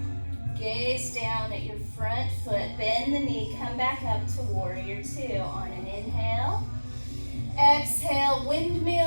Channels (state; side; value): inverted; both; correlation -1.00